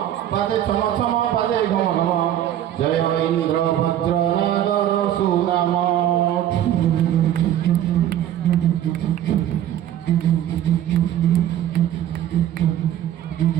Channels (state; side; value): quieter; left; 11.4 dB